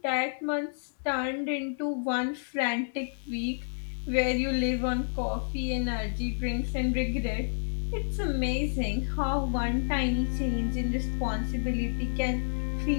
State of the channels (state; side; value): silent; right; 57 dB below the other